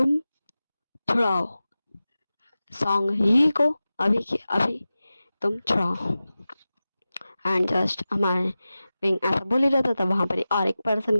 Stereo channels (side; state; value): both; inverted; correlation -0.95